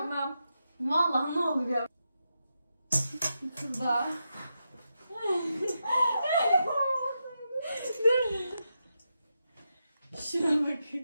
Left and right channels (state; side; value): inverted; both; correlation -0.86